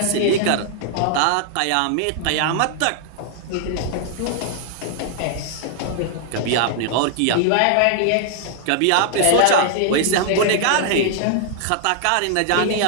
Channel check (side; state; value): both; different; correlation -0.01